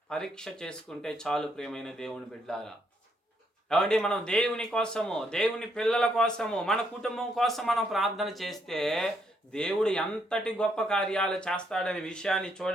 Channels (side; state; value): both; normal; correlation 0.74